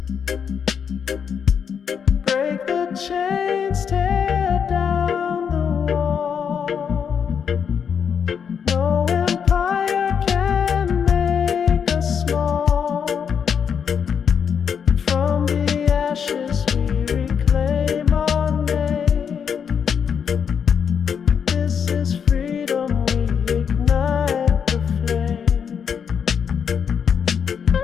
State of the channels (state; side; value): quieter; right; 7.2 dB